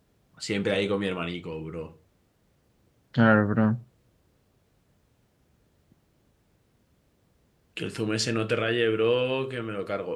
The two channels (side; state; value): both; identical; correlation 1.00